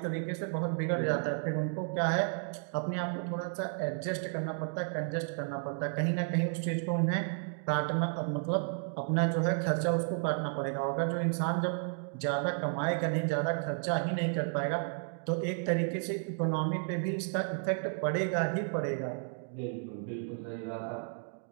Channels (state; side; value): silent; left; 56 dB below the other